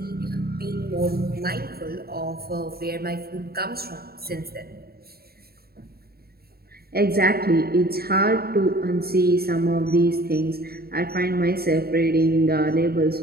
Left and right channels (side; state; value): left; late; 0.45 ms